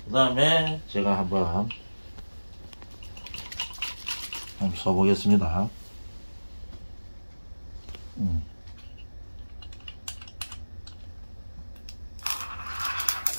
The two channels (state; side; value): inverted; both; correlation -1.00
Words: 다음에 제가 한번 써보겠습니다.